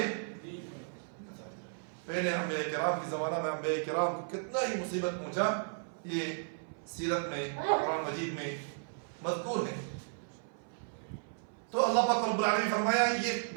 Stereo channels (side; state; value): left; silent; 55 dB below the other